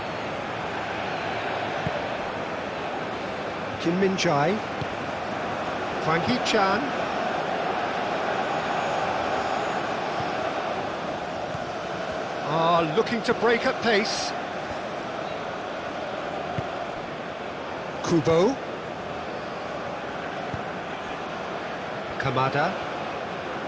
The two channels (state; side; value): identical; both; correlation 1.00